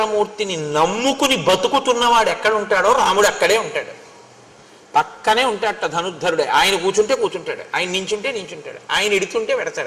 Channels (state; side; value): identical; both; correlation 1.00